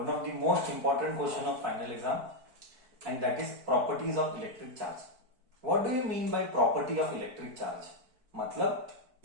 of the most important question of final exam, and that is properties of electric charge. What do you mean by property of electric charge? मतलब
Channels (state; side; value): late; left; 4.5 ms